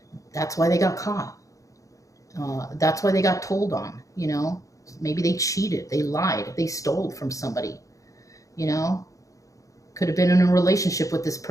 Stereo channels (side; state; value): right; late; 0.16 ms